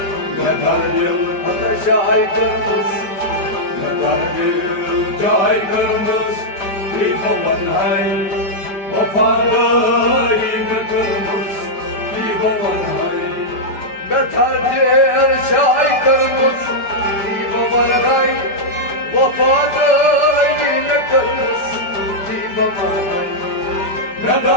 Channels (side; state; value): right; late; 5.0 ms